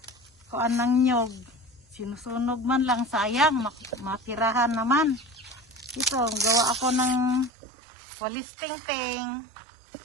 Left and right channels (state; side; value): drops out; left; at 7.5 s